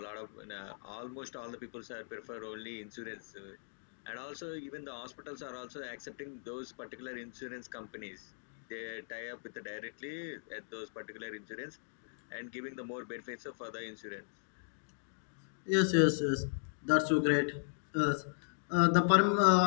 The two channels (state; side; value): silent; right; digital silence